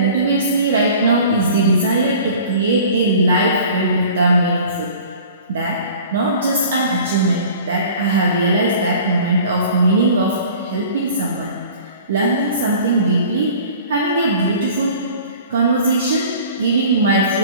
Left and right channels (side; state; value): both; inverted; correlation -0.45